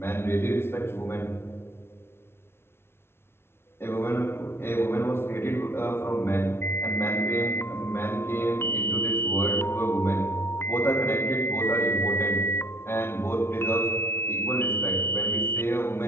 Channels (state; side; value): late; right; 0.12 ms